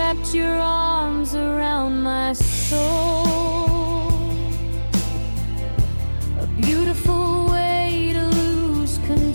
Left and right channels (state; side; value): inverted; both; correlation -1.00